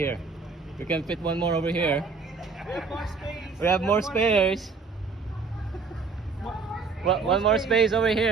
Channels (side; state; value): left; quieter; 4.6 dB